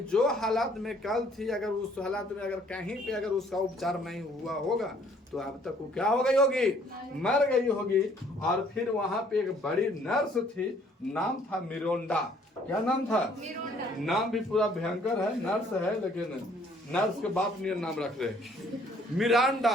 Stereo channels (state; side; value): normal; both; correlation 0.61